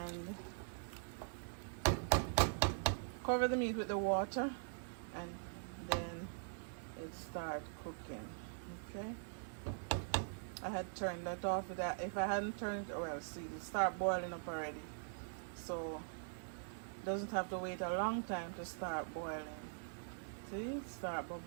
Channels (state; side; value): silent; left; digital silence